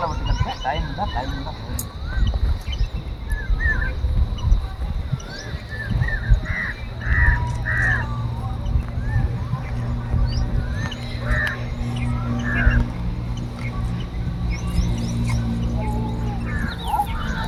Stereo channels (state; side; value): identical; both; correlation 1.00